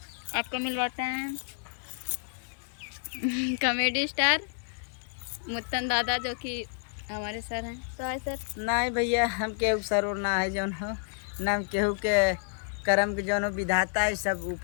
आपको मिलवाते हैं कॉमेडी स्टार मुत्तन दादा, जो कि हमारे सर हैं। तो हाय सर। नहीं भैया हम केहू सर और ना है जौन हो ना हम केहू के कर्म के जौन हो विधाता है, सब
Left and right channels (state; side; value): silent; right; digital silence